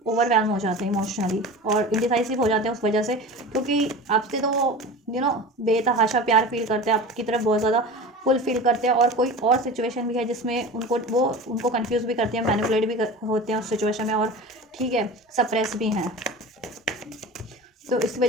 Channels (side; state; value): both; normal; correlation 0.33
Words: ओवरवेलम हो जाते हैं इमोशनली, और इंडिसाइसिव हो जाते हैं उस वजह से, क्योंकि आपसे तो बेतहाशा प्यार फील करते हैं, आपकी तरफ बहुत ज़्यादा फुल फील करते हैं, और कोई और सिचुएशन भी है जिसमें उनको कंफ्यूज भी करते हैं, मैनिपुलेट भी होते हैं उस सिचुएशन में, और ठीक है, सप्रेस भी हैं, तो इस